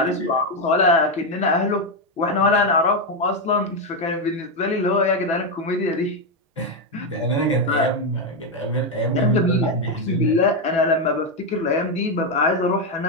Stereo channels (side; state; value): both; normal; correlation 0.06